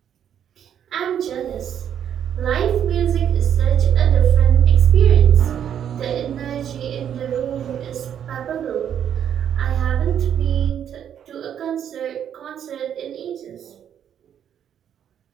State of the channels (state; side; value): quieter; left; 9.3 dB